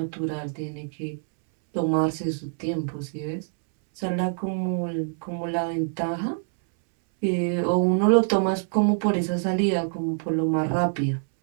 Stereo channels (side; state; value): left; silent; 62 dB below the other